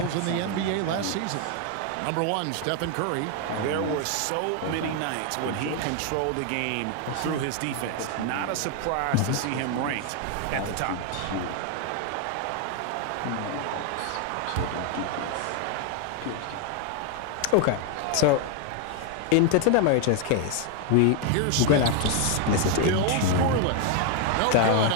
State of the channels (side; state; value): both; different; correlation 0.01